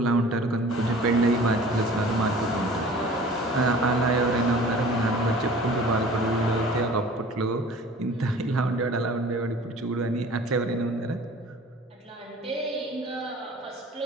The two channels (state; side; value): normal; both; correlation 0.45